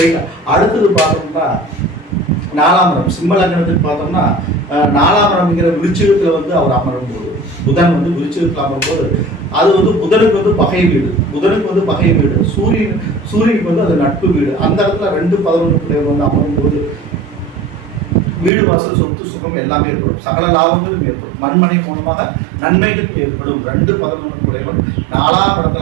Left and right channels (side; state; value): left; drops out; at 18.5 s